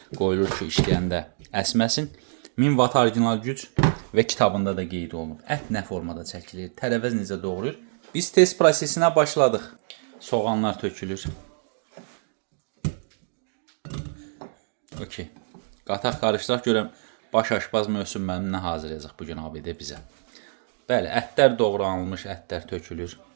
qoyulur ki, işləyəndə əsməsin. 1000 watt orijinal güc və kitabında da qeyd olunub. Ət nə formada çəkilir, tərəvəz necə doğrayır. Biz test prosesinə başladıq. Soğanlar tökülür. Okey. Qataq qarışdıraq görəm baş aşbaz Möhsün müəllim nə hazırlayacaq bugün abidə bizə. Bəli, ətlər doğranılmış, ətlər tökülür.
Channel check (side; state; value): left; silent; digital silence